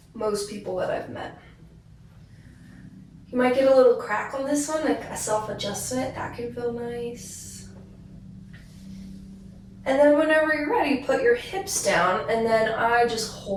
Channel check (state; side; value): identical; both; correlation 1.00